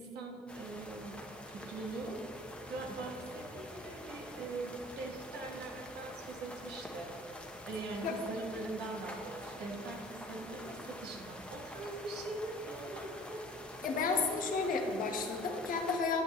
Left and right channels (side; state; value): both; normal; correlation 0.48